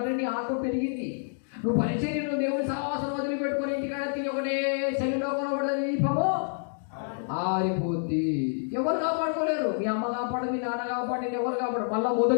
నీ ఆత్మ పెరిగింది. నువ్వు పరిచర్యను దేవుని సహవాసం వదిలిపెట్టుకొని ఇంటికాడ తిని ఒకటే శరీరంలో కొనబడదు, దీపము ఆరిపోద్ది. ఎవరు కాపాడుకోలేరు. మీ అమ్మ కాపాడు, మీ నాన్న కాపాడు, నేను ఎవరు కాపాడు. మళ్ళా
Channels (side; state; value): right; silent; digital silence